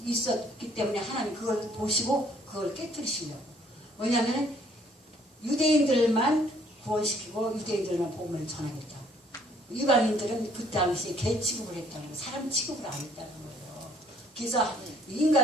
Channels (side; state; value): both; normal; correlation 0.62